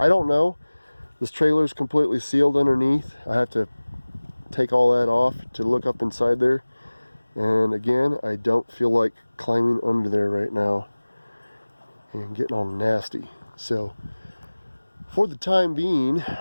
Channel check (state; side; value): inverted; both; correlation -1.00